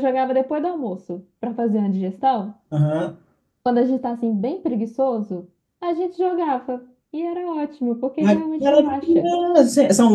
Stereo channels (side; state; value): both; identical; correlation 1.00